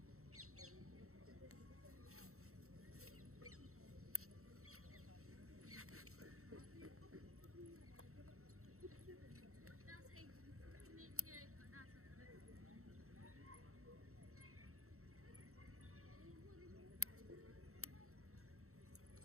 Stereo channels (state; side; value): late; left; 0.63 ms